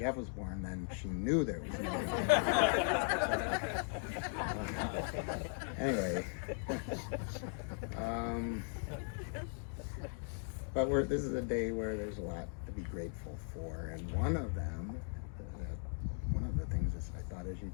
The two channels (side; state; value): right; silent; 52 dB below the other